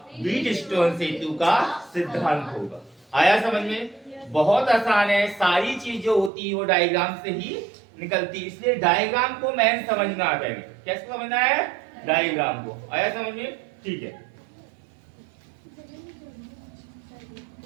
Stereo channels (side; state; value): left; drops out; at 6.3 s